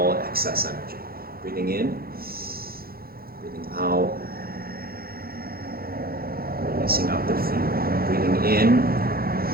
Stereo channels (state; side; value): late; left; 0.44 ms